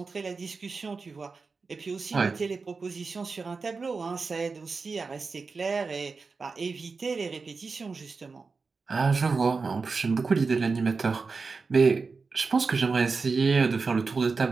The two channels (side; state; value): left; quieter; 4.5 dB